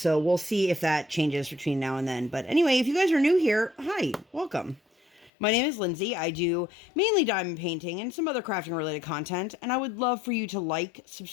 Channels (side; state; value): right; drops out; at 5.3 s